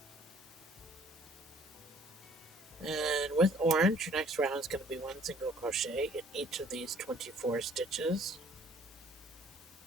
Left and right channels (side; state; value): both; normal; correlation 0.57